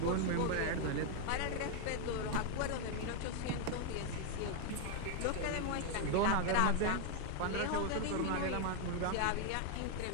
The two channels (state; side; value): different; both; correlation 0.00